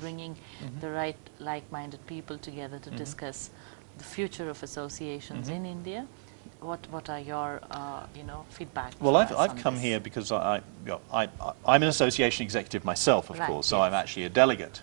the right like-minded people together to discuss the future of associations in India? What are your feedback? Well, I've come here because I'm an association executive myself, of course, so I'm actually a delegate.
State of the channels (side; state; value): left; silent; 57 dB below the other